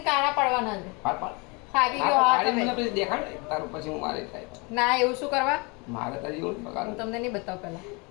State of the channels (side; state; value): right; quieter; 29.3 dB